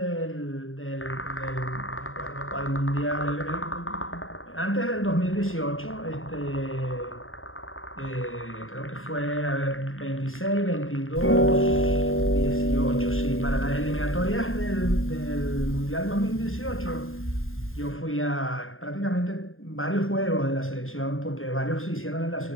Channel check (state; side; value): late; right; 0.60 ms